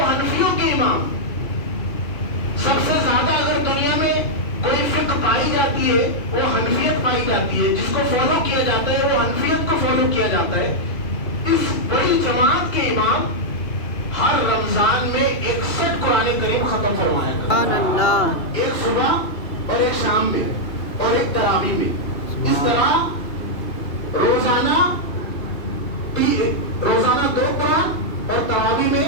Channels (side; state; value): right; late; 2.7 ms